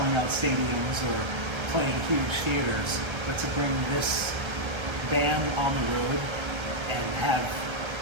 out stadiums or playing huge theaters, but to bring this band on the road and have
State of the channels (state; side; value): late; left; 1.3 ms